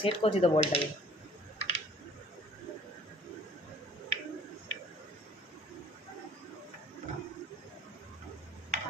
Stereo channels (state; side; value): normal; both; correlation 0.53